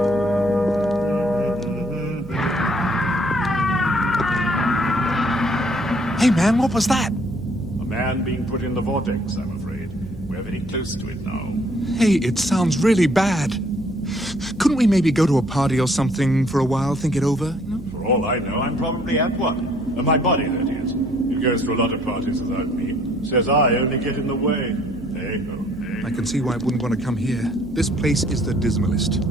Hey, man, what was that? A man being put in the vortex, I'm afraid. We're very close to it now. Hey, it sounds really bad. Couldn't we maybe go to a party or something for a while, think it over? For all I know, I'm probably at one. My body, that is. It goes to a lot of parties without me. Says I only get in the way. Hey, oh, hey. I can see why it wouldn't want to come here. This place is the dismalest.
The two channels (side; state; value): right; noise; hum, 17 dB below the sound